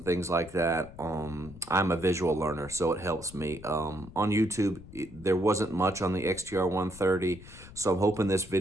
things like that. I'm a visual learner, so it helps me. On YouTube, there wasn't much on the XTR130, so I'm hoping this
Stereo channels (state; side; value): noise; left; rumble, 17 dB below the sound